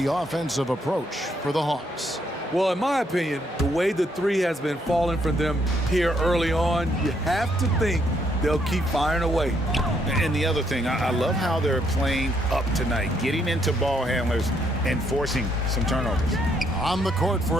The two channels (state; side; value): normal; both; correlation 0.72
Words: offensive approach for the Hawks. Well, in my opinion, the way the three has been falling from them here early on, you have to think they'll keep firing away. And the other thing, I love how they're playing up tonight, getting into ball handlers and forcing some turnovers. On the court for